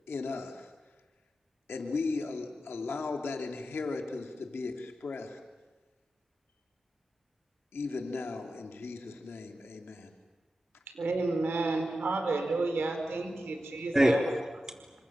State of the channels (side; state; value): both; normal; correlation 0.91